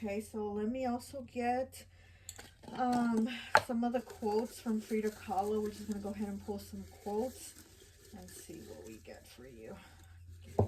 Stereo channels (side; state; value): both; identical; correlation 1.00